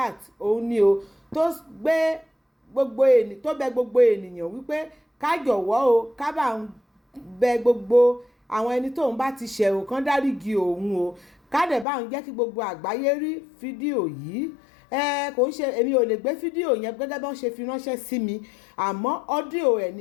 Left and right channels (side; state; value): right; drops out; at 11.9 s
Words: òun ni o tó bẹ gbogbo ènìyàn wípé ká jọ̀wọ́ o ká bá ń bẹ gbogbo àwọn ẹni tóun bá ti ṣẹ̀ ò kán dáríjì òun o ká dẹ̀ bá ń jẹ́ kí gbogbo àgbáyé rí fídíò yìí kò ń ṣe èmi ò lè gbé fídíò yẹn gẹ́gẹ́ bí wọ́n ṣe fi ránṣẹ́ sí mi àmọ́ ọ́díò ẹ̀